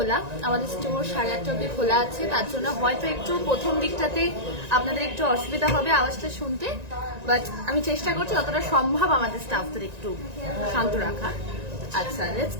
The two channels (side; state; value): left; late; 1.9 ms